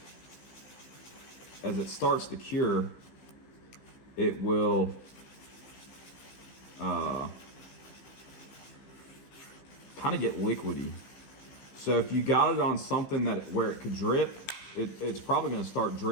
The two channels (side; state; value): right; late; 15 ms